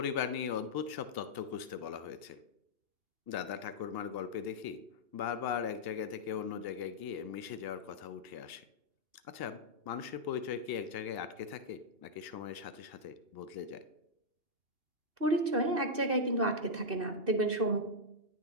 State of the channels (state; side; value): late; left; 2.8 ms